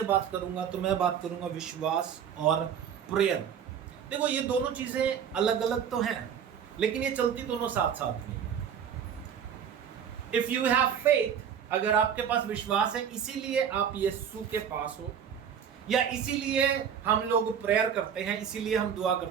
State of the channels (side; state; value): left; quieter; 8.1 dB